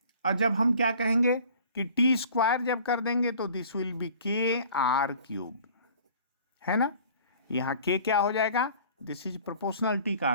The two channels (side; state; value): both; inverted; correlation -0.49